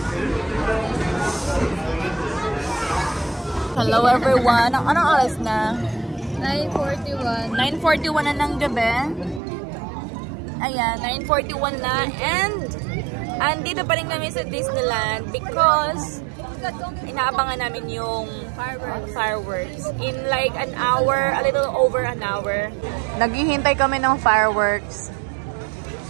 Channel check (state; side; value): drops out; left; at 9.4 s